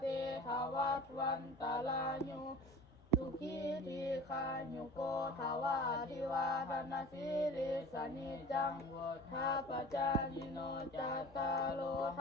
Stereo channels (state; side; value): normal; both; correlation 0.41